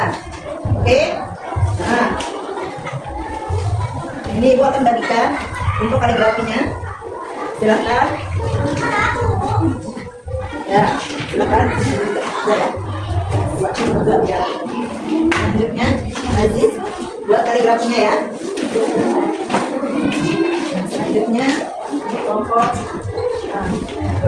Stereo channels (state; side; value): identical; both; correlation 1.00